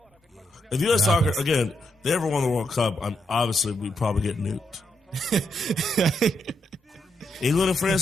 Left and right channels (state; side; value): normal; both; correlation 0.80